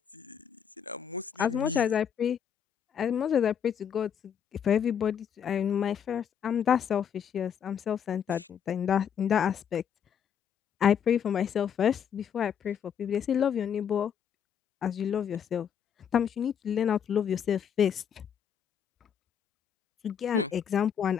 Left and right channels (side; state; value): right; quieter; 8.1 dB